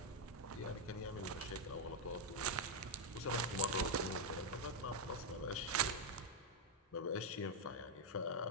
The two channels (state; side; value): normal; both; correlation 0.00